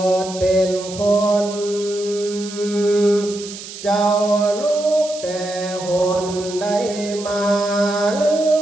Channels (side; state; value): right; noise; hiss, 13 dB below the sound